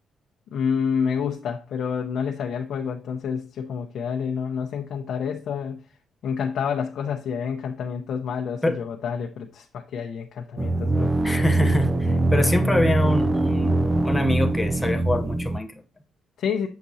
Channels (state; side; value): normal; both; correlation 0.87